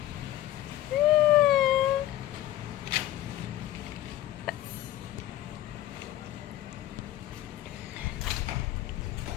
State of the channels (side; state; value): right; quieter; 13.9 dB